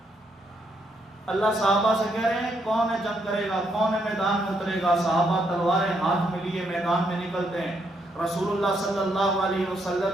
اللہ صحابہ سے کہہ رہے ہیں کون ہے جنگ کرے گا، کون ہے میدان میں اترے گا؟ صحابہ تلواریں ہاتھ میں لیے میدان میں نکلتے ہیں۔ رسول اللہ صلی اللہ علیہ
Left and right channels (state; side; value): normal; both; correlation 0.75